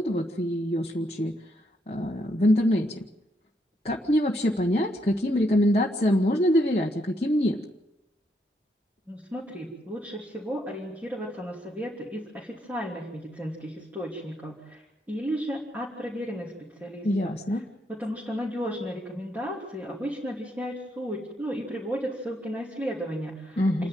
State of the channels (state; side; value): normal; both; correlation 0.76